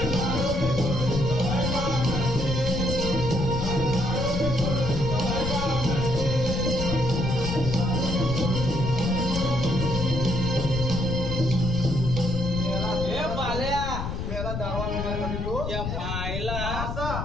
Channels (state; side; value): noise; left; rumble, 4 dB below the sound